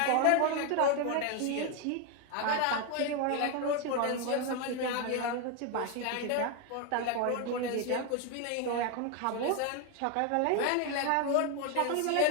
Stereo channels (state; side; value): different; both; correlation 0.01